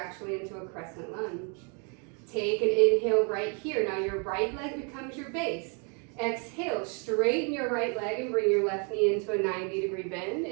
into a crescent lunge. Take an inhale right here. Now your right leg becomes your base. Exhale, straighten your right leg and bring your left knee into a 90-degree bend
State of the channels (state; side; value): quieter; left; 36.6 dB